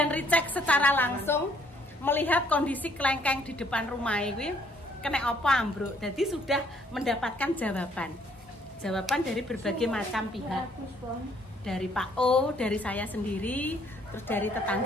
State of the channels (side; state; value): both; normal; correlation 0.65